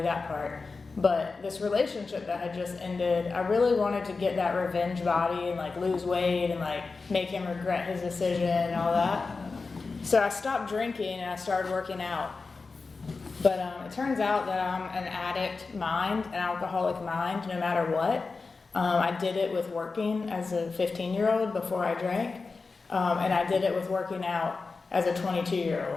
that part. But this relationship that had just ended, I really wanted to get that revenge body and like lose weight and like make him regret his decision and all that. So I stopped drinking and I started working out. But it turns out that I'm an addict mind, an alcoholic mind, no matter what. I did it with working as a 15-year-old before I drank. And I did it with working out as a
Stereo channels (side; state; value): right; quieter; 4.2 dB